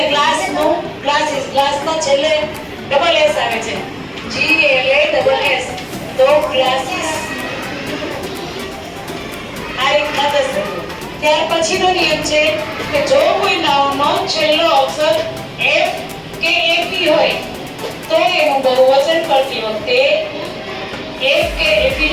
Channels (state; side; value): identical; both; correlation 1.00